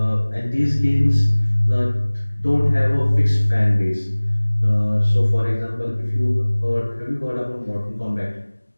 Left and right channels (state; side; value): inverted; both; correlation -1.00